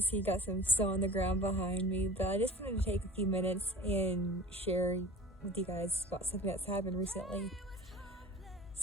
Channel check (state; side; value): normal; both; correlation 0.39